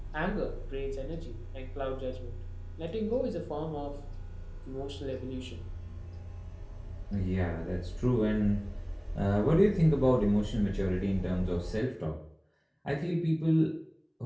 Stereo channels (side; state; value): both; identical; correlation 1.00